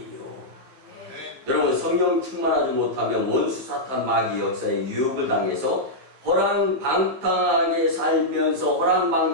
여러분, 성령 충만하지 못하면 원수 사탄 마귀 역사에 유혹을 당해서 허랑방탕하게 살면서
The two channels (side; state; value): left; late; 15 ms